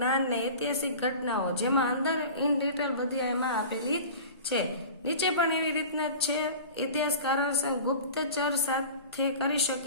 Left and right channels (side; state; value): both; inverted; correlation -0.37